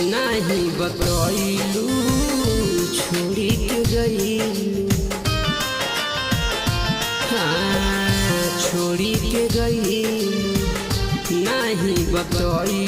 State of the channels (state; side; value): identical; both; correlation 1.00